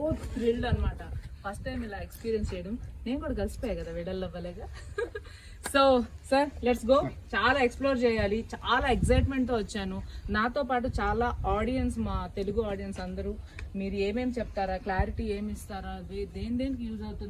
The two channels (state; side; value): identical; both; correlation 1.00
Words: థ్రిల్డ్ అనమాట. ఫస్ట్ టైం ఇలా ఎక్స్పీరియన్స్ చేయడం. నేను కూడా కలిసిపోయా కదా విడల్ అవ్వలేగా. So sir let's go. చాలా ఎక్స్ప్లోర్ చేయాలి, చాలా ఎక్సైట్మెంట్ తో వచ్చాను. నాతో పాటు చాలా ఆడియన్స్, మా తెలుగు ఆడియన్స్ అందరూ మీరు ఏమేమి చెప్తారా, క్లారిటీ ఏమి ఇస్తారా, దేనికి యూజ్